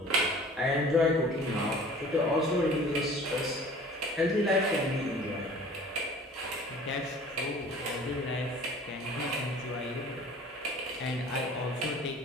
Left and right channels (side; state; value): both; normal; correlation 0.46